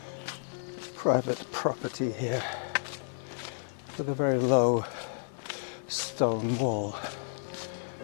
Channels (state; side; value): silent; right; 57 dB below the other